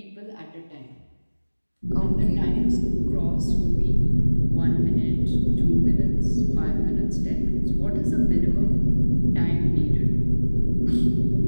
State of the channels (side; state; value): both; inverted; correlation -1.00